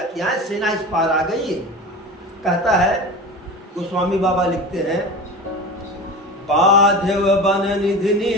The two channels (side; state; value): both; normal; correlation 0.31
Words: कि यहाँ सेना इस पार आ गई। कहता है गोस्वामी बाबा लिखते हैं, बाध्यव बन निधि